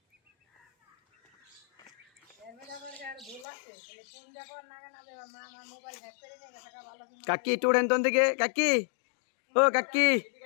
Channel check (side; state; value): right; drops out; at 3.5 s